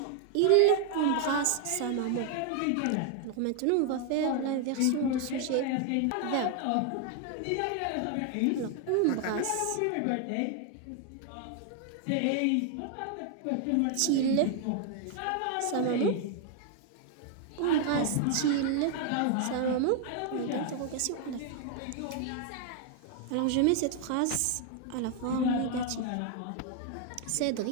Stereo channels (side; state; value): both; different; correlation 0.00